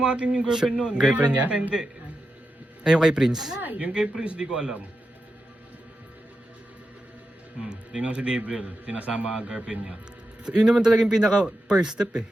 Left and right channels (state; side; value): normal; both; correlation 0.89